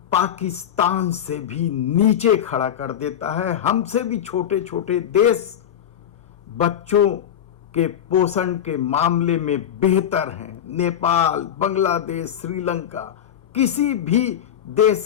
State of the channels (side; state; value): right; quieter; 9.8 dB